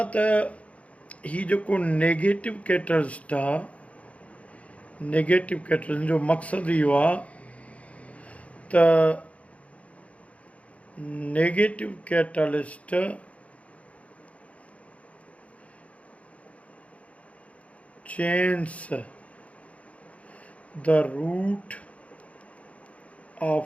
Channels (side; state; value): right; late; 0.065 ms